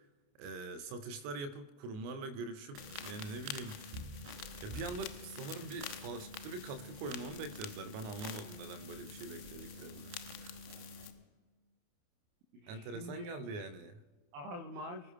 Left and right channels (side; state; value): left; late; 28 ms